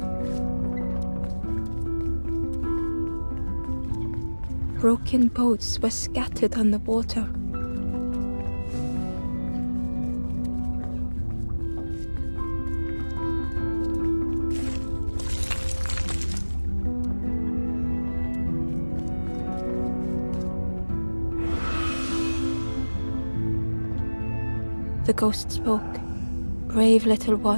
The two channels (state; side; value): inverted; both; correlation -1.00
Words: Broken boats were scattered on the water. The ghost spoke. Brave little